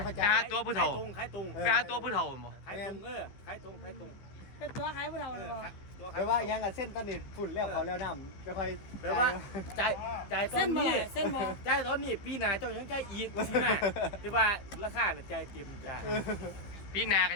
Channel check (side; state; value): right; late; 15 ms